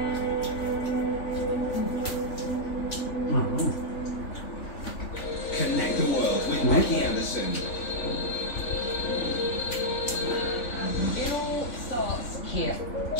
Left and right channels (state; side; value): late; right; 3.4 ms